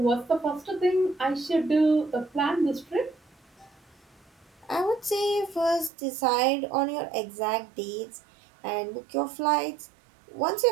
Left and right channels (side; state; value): left; drops out; at 5.9 s